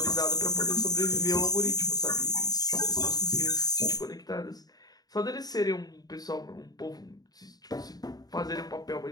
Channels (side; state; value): right; late; 0.19 ms